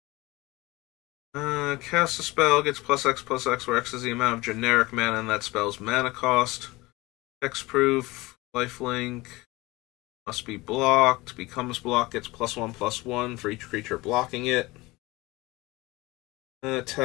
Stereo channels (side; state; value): right; quieter; 21.5 dB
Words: Cast a spell, gets +X/+X, where X is the amount of generic mana in that spell's mana cost. Hexproof. Lifelink. Must be blocked. Becomes blocked. Gets +1/+1 for each creature blocking it.